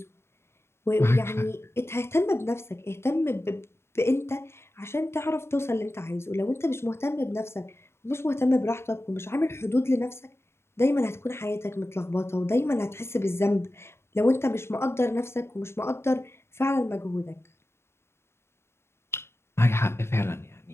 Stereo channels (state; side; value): late; right; 0.12 ms